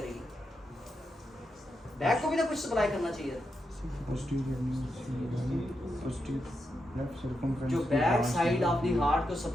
बैक को भी तो कुछ सप्लाई करना चाहिए। जो back side of the heart को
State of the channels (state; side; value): normal; both; correlation 0.85